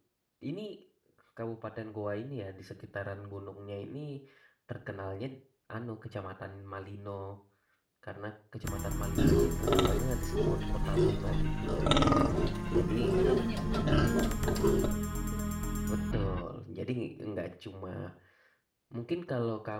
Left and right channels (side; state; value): both; identical; correlation 1.00